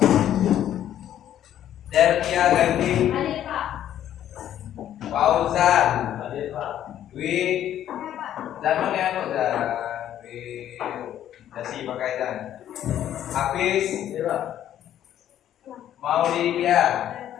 Delvia Ganti, Fauzan, Dwi, Jangan ya kok Dwi, Dasi pakai dan Hafiz, Maulidia,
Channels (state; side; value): quieter; right; 11.2 dB